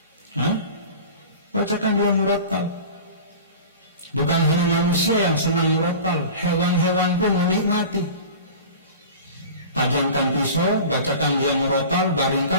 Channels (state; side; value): inverted; both; correlation -0.37